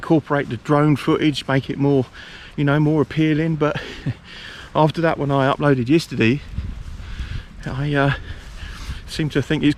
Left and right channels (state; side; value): identical; both; correlation 1.00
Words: the drone footage, make it more, you know, more appealing. But after that one I uploaded yesterday, I seem to think it's